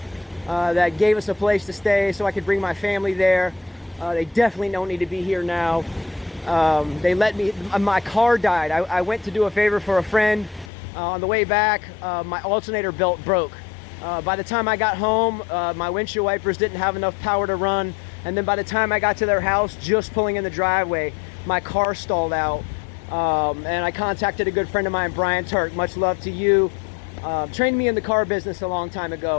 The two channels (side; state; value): right; drops out; at 10.7 s